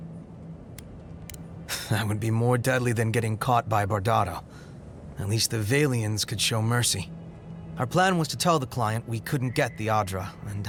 That would be more deadly than getting caught by Bardado. At least the Valians could show mercy. Our plan was to tell the client we couldn't get the Adra and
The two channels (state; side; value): identical; both; correlation 1.00